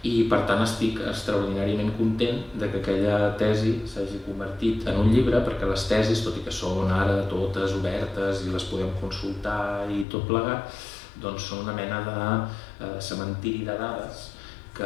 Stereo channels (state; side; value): drops out; right; at 10.1 s